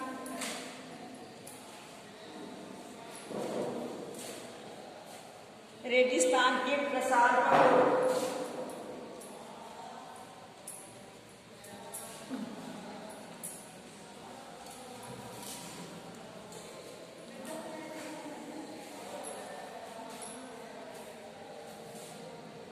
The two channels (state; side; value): identical; both; correlation 1.00